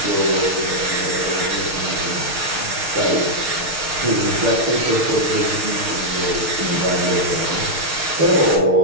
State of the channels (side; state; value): left; late; 6.5 ms